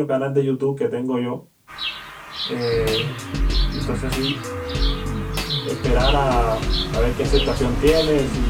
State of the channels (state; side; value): identical; both; correlation 1.00